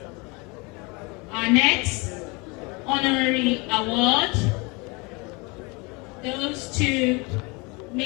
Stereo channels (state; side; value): quieter; right; 28.1 dB